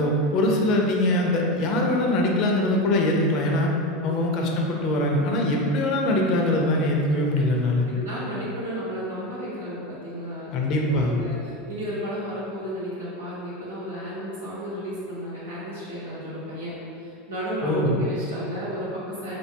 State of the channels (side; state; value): both; normal; correlation 0.19